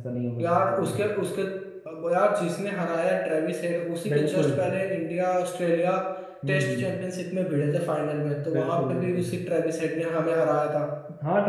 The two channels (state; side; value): identical; both; correlation 1.00